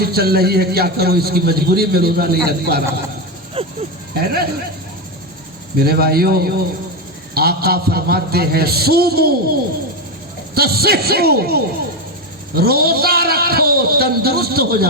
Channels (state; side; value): normal; both; correlation 0.12